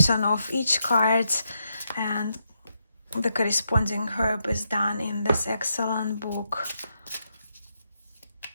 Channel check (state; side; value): inverted; both; correlation -0.81